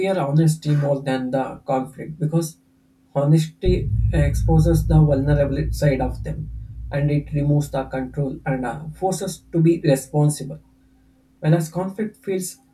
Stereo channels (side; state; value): both; identical; correlation 1.00